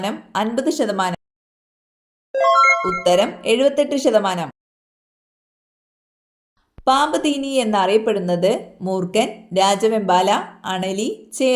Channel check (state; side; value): identical; both; correlation 1.00